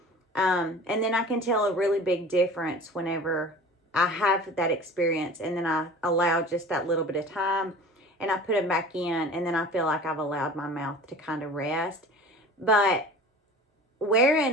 And then I can tell a really big difference whenever I have that experience, and then I allow just that little bit of time and I put them back in, and then I feel like I've allowed my mouth to kind of rest. But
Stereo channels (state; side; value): normal; both; correlation 0.40